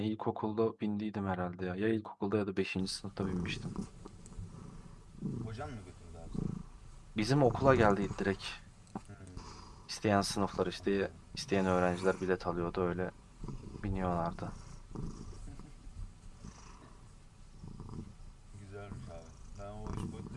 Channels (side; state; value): both; identical; correlation 1.00